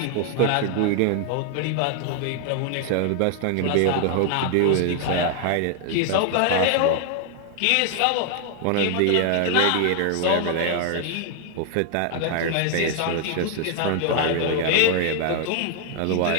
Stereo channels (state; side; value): different; both; correlation 0.00